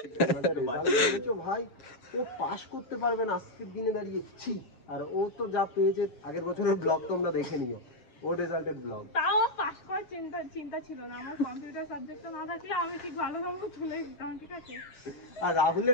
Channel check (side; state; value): right; late; 7.6 ms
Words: রেজাল্ট করেছো ভাই, ও পাস করতে পারবে না আজকের দিনে দাঁড়িয়ে, ছি। আর ও তো যা পেয়েছে, আগের বছরের ব্লগ তোমরা দেখে নিও, ওর রেজাল্টের ব্লগ। তাও পাস করার চিন্তা ছিল না আমার, কম্পিউটার সাবজেক্টটা না থাকলে আমি ঠিক ভালো নম্বর তুলে দিতাম, ঠিক আছে। আর